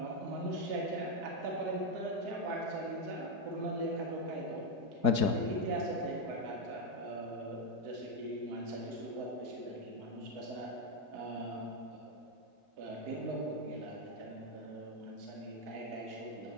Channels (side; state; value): left; late; 4.7 ms